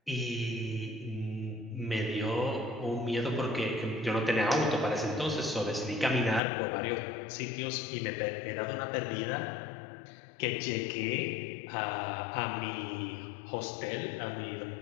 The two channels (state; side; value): drops out; right; at 6.4 s